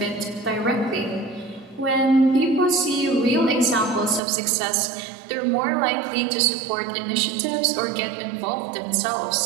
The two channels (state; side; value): drops out; left; at 4.2 s